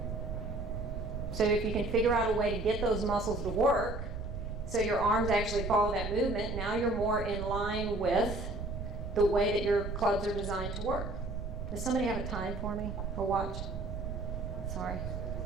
So if you can figure out a way to get those muscles to work, so your arms actually follow that movement, now you're more in line with the way that your clubs are designed to work. Does somebody have a time for me or watch? Sorry.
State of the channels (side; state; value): right; noise; rumble, 5 dB below the sound